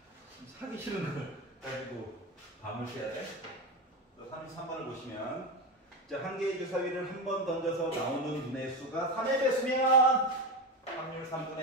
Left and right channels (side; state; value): both; normal; correlation 0.18